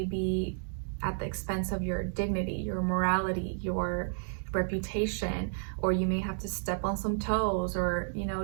be at the expense of your dignity, your morality, your reputation, or you may have to step on some toes, or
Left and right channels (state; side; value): silent; left; 57 dB below the other